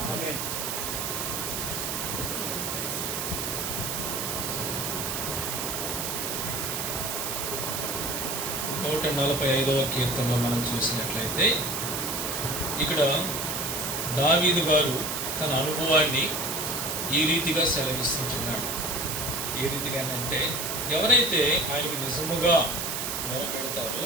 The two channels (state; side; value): noise; right; hiss, 2 dB below the sound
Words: ఆమేన్. 145వ కీర్తనలో మనం చూసినట్లయితే ఇక్కడ దావీదు గారు తన అనుభవాన్ని ఈ రీతిగా సెలవిస్తుంటున్నాడు. ఏ రీతిగానంటే ఎవరైతే ఆయనకు నిజముగా మొరపెడతారో